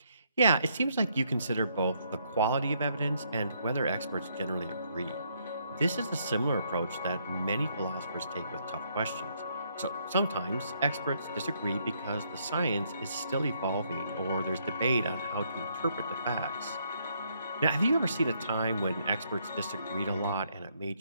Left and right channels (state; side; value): inverted; both; correlation -0.72